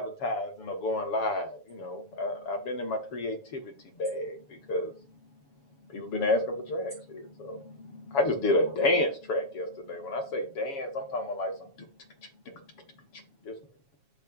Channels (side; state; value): right; late; 7.1 ms